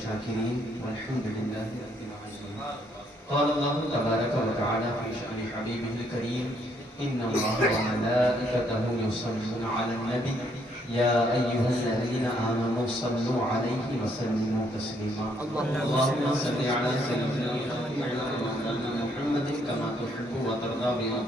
والحمد لله رب العالمين۔ قال الله تبارك وتعالى في شأن حبيبه الكريم إن الله وملائكته يصلون على النبي يا أيها الذين آمنوا صلوا عليه وسلموا تسليما اللهم صل على سيدنا محمد كما تحب وترضى بأن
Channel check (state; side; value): normal; both; correlation 0.70